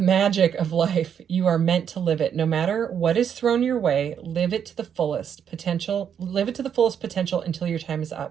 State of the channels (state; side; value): quieter; left; 8.2 dB